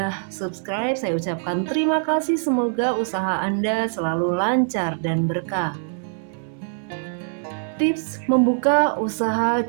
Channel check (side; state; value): left; silent; digital silence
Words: subscribe, saya ucapkan terima kasih. Semoga usaha Anda selalu lancar dan berkah. Tips membuka usaha